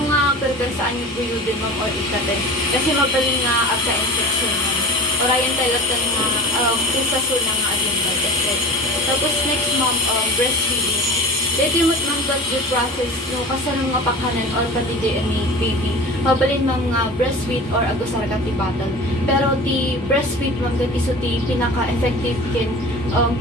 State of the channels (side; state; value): both; normal; correlation 0.36